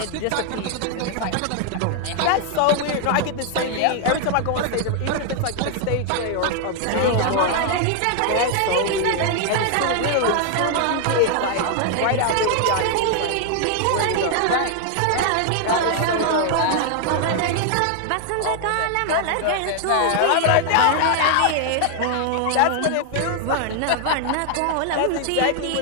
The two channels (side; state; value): both; different; correlation 0.00